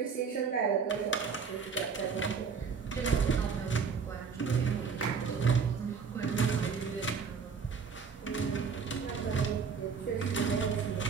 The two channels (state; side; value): quieter; left; 5.7 dB